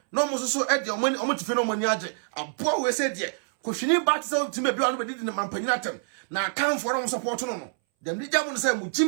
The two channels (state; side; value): silent; left; 61 dB below the other